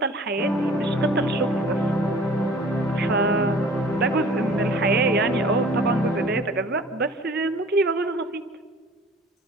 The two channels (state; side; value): normal; both; correlation 0.49